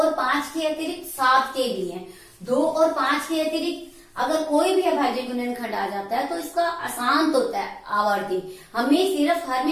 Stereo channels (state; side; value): identical; both; correlation 1.00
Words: 5 के अतिरिक्त 7 के भी हैं। 2 और 5 के अतिरिक्त अगर कोई भी अभाज्य गुणनखंड आ जाता है तो इसका अशांत होता है आवर्ती। हमें सिर्फ हर